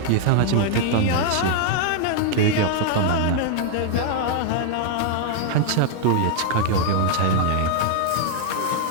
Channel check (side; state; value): both; different; correlation 0.00